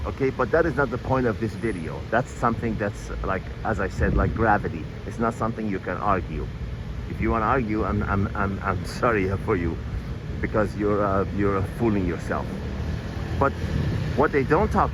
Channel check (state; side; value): identical; both; correlation 1.00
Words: Okay, but that is not the point of this video. That's something that's, like, as I said, like gravity. It's not something you can argue. If you want to argue, I'm sorry for you, because you're fooling yourself. But what they don't